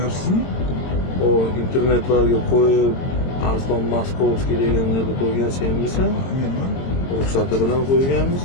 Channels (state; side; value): late; right; 22 ms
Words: O internetlarga qo'yib Arslon Maskovskiy deganlarni qo'ygan senmisan? Menman. Ruxsati bilan